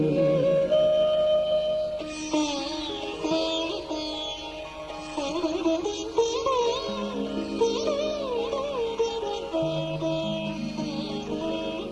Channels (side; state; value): both; identical; correlation 1.00